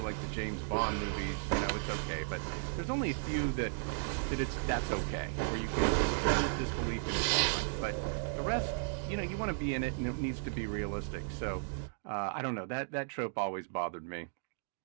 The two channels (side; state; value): left; silent; digital silence